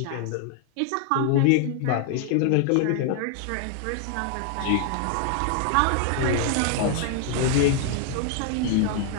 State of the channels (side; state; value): both; different; correlation 0.00